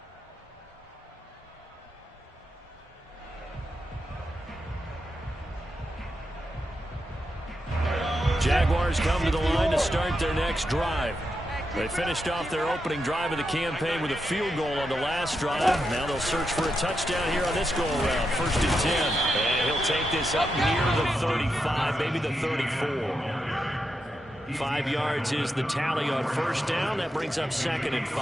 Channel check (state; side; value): normal; both; correlation 0.86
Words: Jaguars come to the line to start their next drive. They finished off their opening drive of the campaign with a field goal on the last drive. Now they'll search for a touchdown here on this go-around. 1st and 10. And he'll take this up near the 35, maybe the 34. 5 yards is the tally on 1st down. That brings up 2nd and